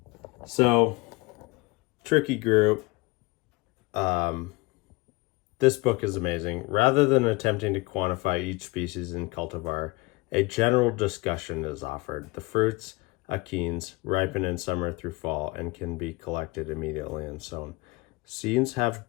So, tricky group. This book is amazing. Rather than attempting to quantify each species in cultivar, a general discussion is offered. The fruits, achenes, ripen in summer through fall and can be collected immediately and sown. Seeds have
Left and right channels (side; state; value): right; quieter; 23.3 dB